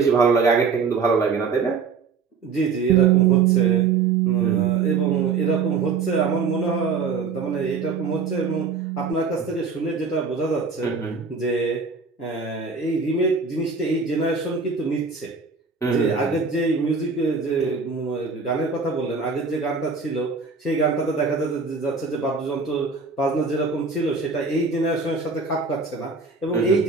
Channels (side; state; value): left; quieter; 5.0 dB